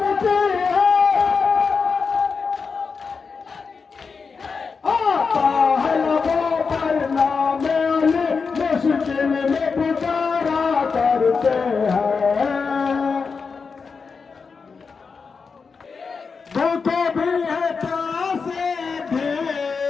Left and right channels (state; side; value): quieter; right; 5.1 dB